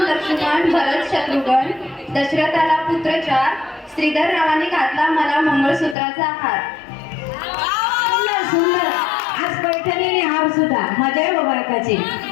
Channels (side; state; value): right; drops out; at 6.0 s